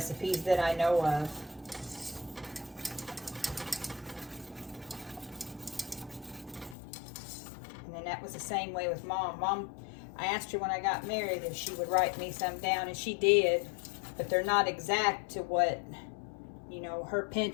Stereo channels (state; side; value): drops out; right; at 6.8 s